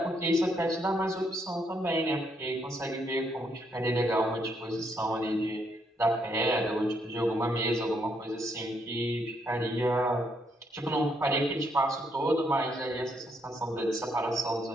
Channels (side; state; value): both; normal; correlation 0.74